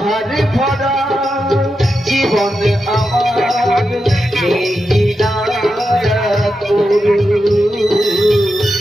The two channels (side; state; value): both; normal; correlation 0.88